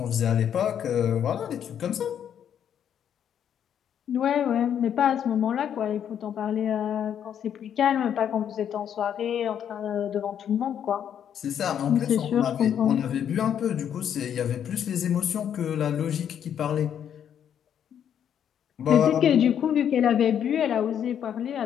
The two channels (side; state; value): right; quieter; 9.1 dB